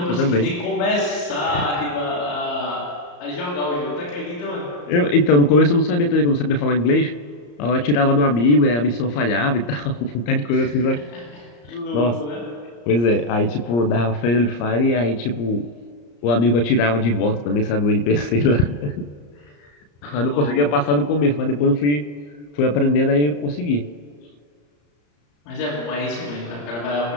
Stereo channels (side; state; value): right; late; 34 ms